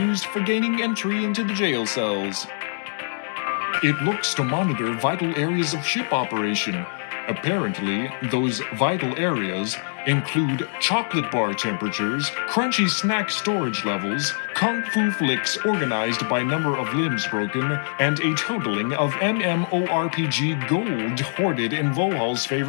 for gaining entry into the jail cells. It looks to monitor vital areas of ship operation. Apparently, those vital areas include chocolate bar temperatures, crunchy snack storage levels, kung fu flicks organized by number of limbs broken, and a totaling of MMORPG gold hoarded in Vohaul's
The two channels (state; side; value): silent; right; digital silence